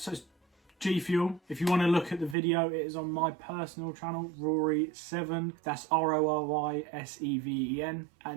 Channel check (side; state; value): left; drops out; at 2.4 s